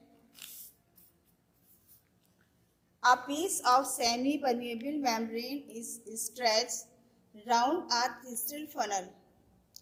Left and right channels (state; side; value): identical; both; correlation 1.00